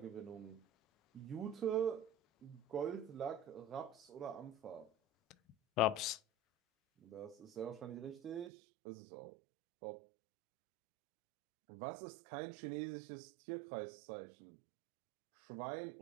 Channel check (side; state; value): left; drops out; at 8.5 s